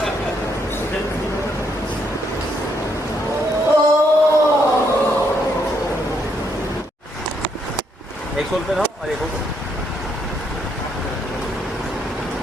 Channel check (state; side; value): normal; both; correlation 0.74